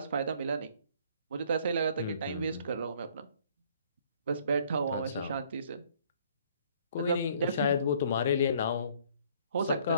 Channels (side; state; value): both; inverted; correlation -0.60